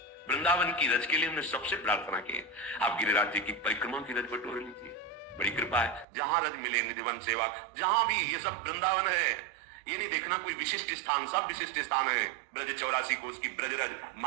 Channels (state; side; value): drops out; left; at 6.1 s